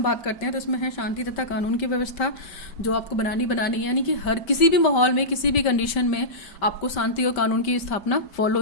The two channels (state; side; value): late; right; 5.1 ms